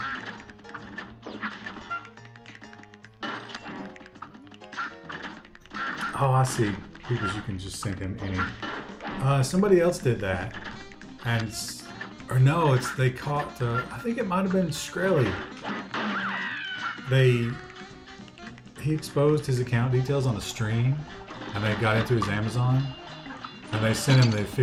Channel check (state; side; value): identical; both; correlation 1.00